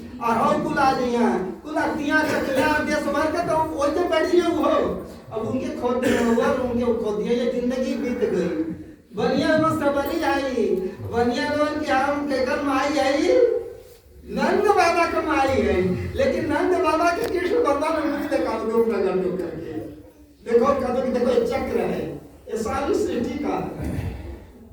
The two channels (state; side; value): identical; both; correlation 1.00